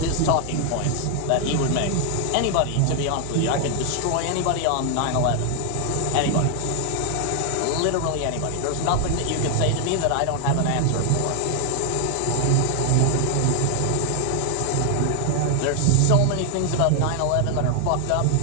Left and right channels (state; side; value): different; both; correlation 0.00